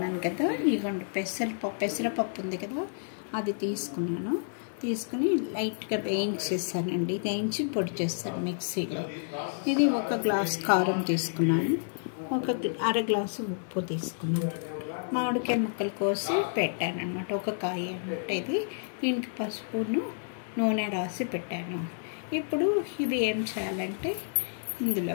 కదా. ఇదిగోండి పెసరపప్పు ఉంది కదా, అది తీసుకుని లైట్గా వేయించేస్తానండి. వేయించి పొడి చేస్తాను మిక్సీలో. ఇది 1 గ్లాస్ కారం తీసుకున్నాను, 1 గ్లాసు ఉప్పు తీసుకున్నాను, మామిడికాయ ముక్కలు కోసి పెట్టాను అనమాట. 1 కాయ అనమాట ఇది. దీనికి పసుపును నూనె రాసి పెట్టాను. ఇప్పుడు ఇది ఏం చేయాలంటే ఇందులో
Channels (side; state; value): right; silent; digital silence